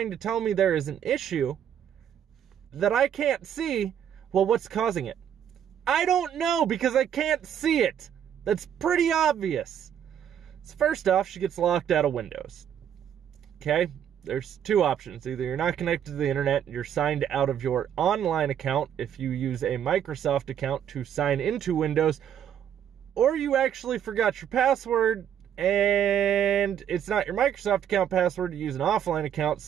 to tell me there is an issue that I can't see, well, what's causing it? I don't know because I can't see it. That's pretty obvious. So first off, she gets locked out of Windows. Okay? There's two options. Either you're not connected to the internet, you're signed out of your online account if you use a Microsoft account to sign into Windows, or you actually forgot your password and it's not your Microsoft account password, you use an offline account,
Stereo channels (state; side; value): quieter; left; 9.4 dB